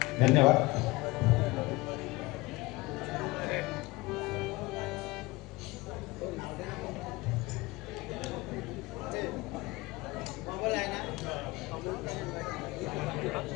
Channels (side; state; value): right; quieter; 21.8 dB